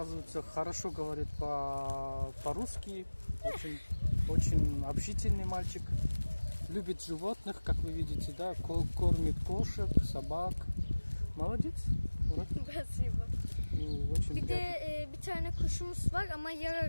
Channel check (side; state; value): both; inverted; correlation -1.00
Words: хорошо говорит по-русски. Очень общительный мальчик. любит животных, как вы видите, да, кормит кошек, собак. Молодец. Murat. Спасибо. Очень Bir de приятно. bir tane kuşumuz var ama